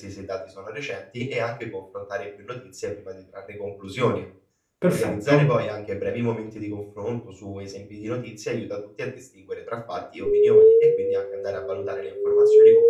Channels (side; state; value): both; identical; correlation 1.00